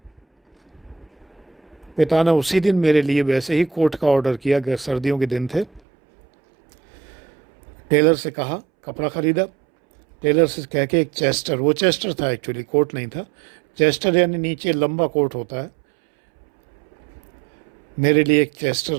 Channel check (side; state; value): left; drops out; at 5.8 s